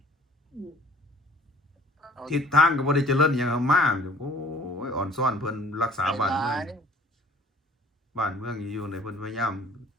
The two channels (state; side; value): normal; both; correlation 0.51